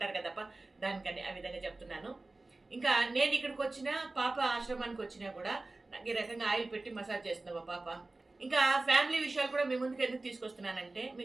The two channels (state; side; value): quieter; left; 3.1 dB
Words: కదప్ప, దానికని ఆ విధంగా చెప్తున్నాను. ఇంకా నేను ఇక్కడికి వచ్చినా, పాప ఆశ్రమానికి వచ్చినా కూడా నాకు ఈ రకంగా ఆయిల్ పెట్టి మసాజ్ చేస్తున్నావా పాప. ఇంకా ఫ్యామిలీ విషయాలు కూడా మీ ముందుకు ఎందుకు తీసుకొస్తున్నానంటే,